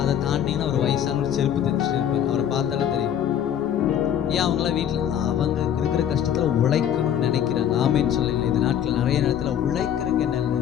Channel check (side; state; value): right; quieter; 9.7 dB